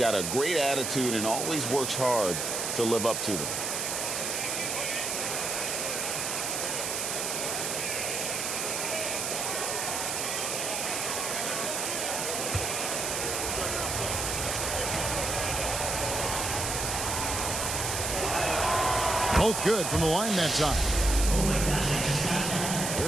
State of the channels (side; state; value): right; noise; hiss, 1 dB below the sound